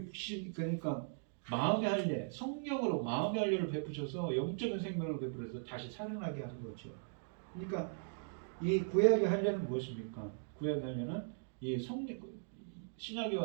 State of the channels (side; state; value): left; silent; digital silence